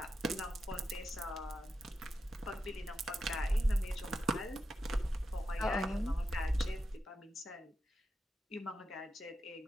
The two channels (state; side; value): normal; both; correlation 0.88